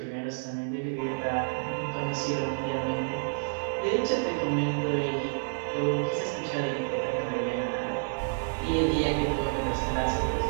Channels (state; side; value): silent; left; digital silence